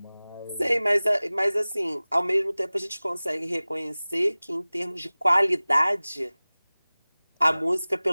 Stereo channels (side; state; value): both; inverted; correlation -0.99